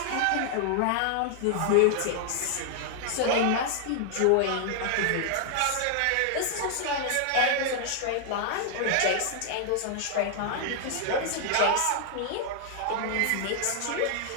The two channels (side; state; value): both; different; correlation 0.00